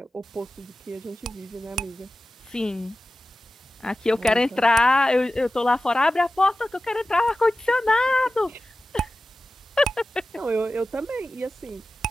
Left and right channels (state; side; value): normal; both; correlation 0.94